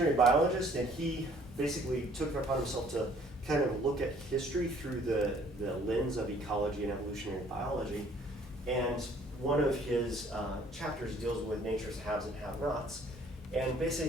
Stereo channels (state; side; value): normal; both; correlation 0.58